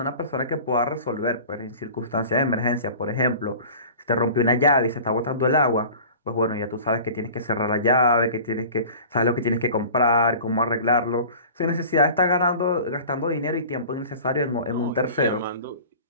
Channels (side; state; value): both; inverted; correlation -0.41